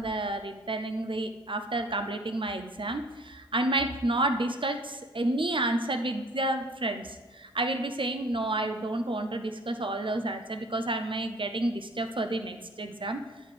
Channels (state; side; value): normal; both; correlation 0.51